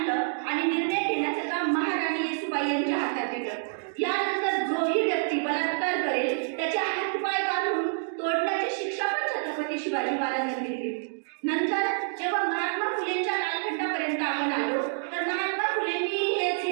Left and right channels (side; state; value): left; silent; digital silence